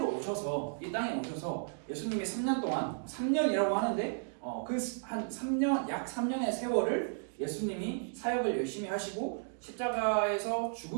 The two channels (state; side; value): silent; left; digital silence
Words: 오셔서 이 땅에 오셔서 예수님이 3년 동안 3년이라고 하는데 그 한 3년 약 3년의 세월을 예수님이 사역을 열심히 하시고 십자가에서